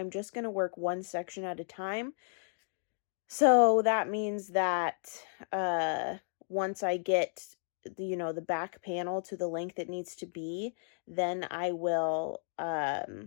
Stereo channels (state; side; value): silent; right; digital silence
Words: just going to work one section at a time. So that means that once I get the back panel to the length it needs to be, then I will